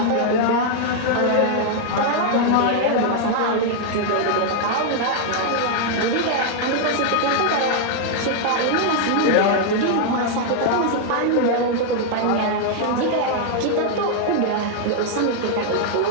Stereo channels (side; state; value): both; different; correlation 0.00